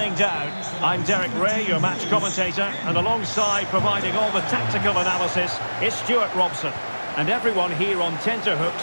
down. I'm Derek Ray, your match commentator, and alongside providing all the tactical analysis is Stuart Robson. And everyone here on tenterhooks,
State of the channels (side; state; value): both; inverted; correlation -1.00